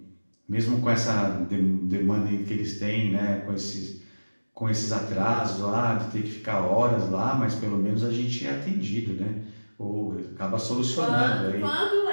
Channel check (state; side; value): inverted; both; correlation -1.00